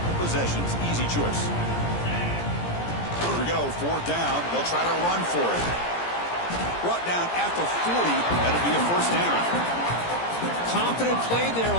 possessions. Easy choice. Here we go, 4th down. They'll try to run for it. Brought down at the 40. That'll be a first down. Confident play there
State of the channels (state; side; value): late; right; 17 ms